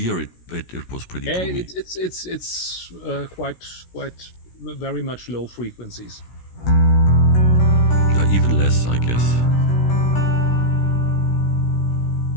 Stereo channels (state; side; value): late; right; 16 ms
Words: It was pretty Yeah, boomy. it's quite very much low frequencies. Even less, I guess.